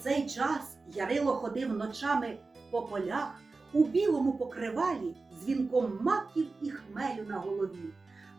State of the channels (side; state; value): left; quieter; 3.8 dB